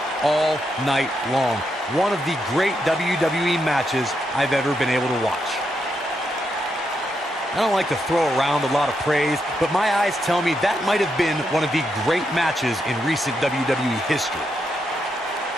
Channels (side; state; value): both; normal; correlation 0.82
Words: all night long. One of the great WWE matches I've ever been able to watch. I don't like to throw around a lot of praise, but my eyes tell me that might have been one of the great matches in recent WWE history.